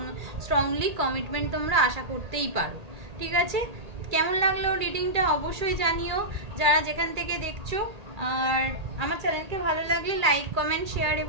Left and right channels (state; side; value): late; left; 1.8 ms